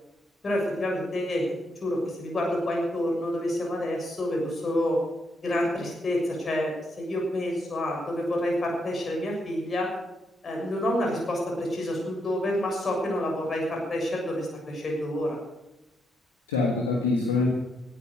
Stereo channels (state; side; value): normal; both; correlation 0.79